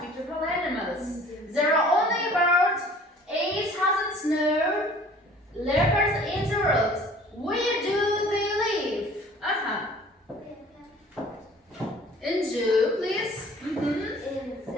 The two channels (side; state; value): both; normal; correlation 0.50